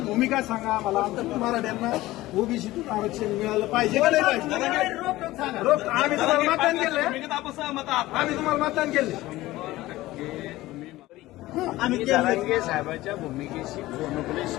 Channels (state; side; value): quieter; right; 17.4 dB